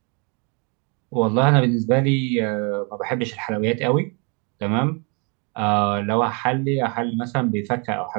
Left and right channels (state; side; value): quieter; left; 34.2 dB